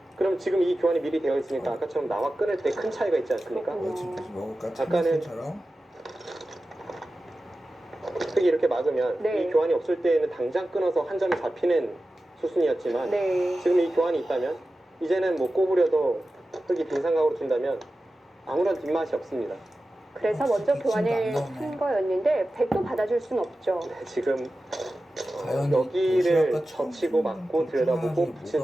그럼 지금 이 교환이 미리 되어 있으니까 아까처럼 나와 끊을 때 큰 차이가 있지 않습니까? 그렇군요. 집에서 먹을까? 아까는 참치처럼? 흙이 이렇게 막으면 네. 이 교환이 없을 때에는 당장 끊어서 한 점이 잡히는 수순이었지만 네. 지금 이 교환이 있다면 이제는 뭐 꼬부려도 흙이 빈상각으로 둔다면 아무런 뒷맛이 없습니다. 그래서 먼저 진짜 교환을 안 나오네. 한 거였는데 백도 받아줄 순 없죠. 네, 지금 과연 여기를 도시락과 젖히고 막고 들여다보고 뭐가 붙인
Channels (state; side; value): normal; both; correlation 0.94